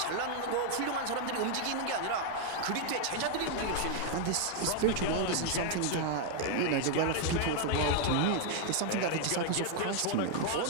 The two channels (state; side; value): different; both; correlation 0.00